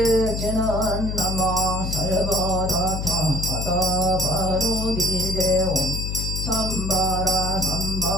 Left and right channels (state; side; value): noise; left; hum, 3 dB below the sound